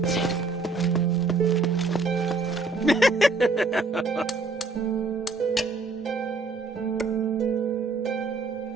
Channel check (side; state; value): left; quieter; 3.7 dB